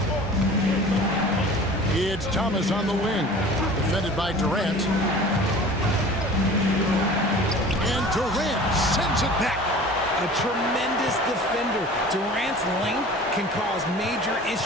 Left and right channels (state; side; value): normal; both; correlation 0.42